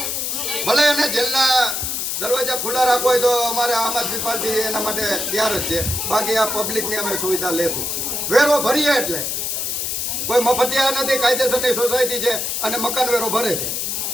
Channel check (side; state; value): left; noise; hiss, 1 dB below the sound